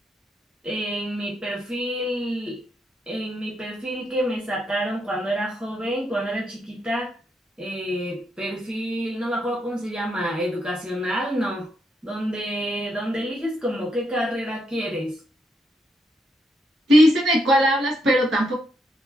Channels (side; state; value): both; normal; correlation 0.79